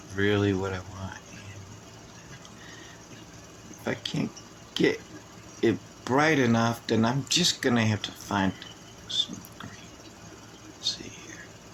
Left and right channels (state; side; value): identical; both; correlation 1.00